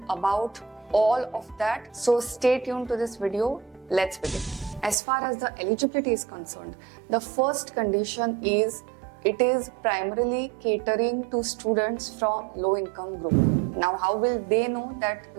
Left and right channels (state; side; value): drops out; left; at 5.0 s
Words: about all of that. So stay tuned to this video. Let's begin. As far as the eligibility is concerned, the first condition is it is primarily catering to students from low income group. Now, how will they know that